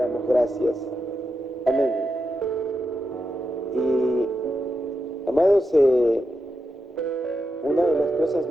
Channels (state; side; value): normal; both; correlation 0.87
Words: gracias. Amén. Y, amados, una de las cosas